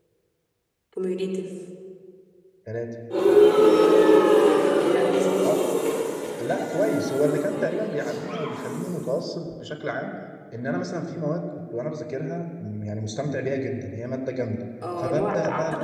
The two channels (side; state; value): both; identical; correlation 1.00